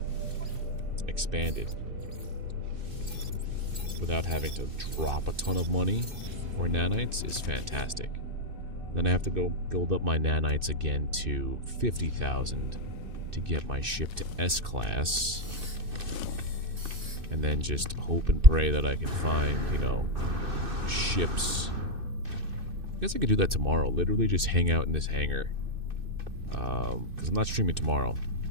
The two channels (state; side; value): late; left; 2.6 ms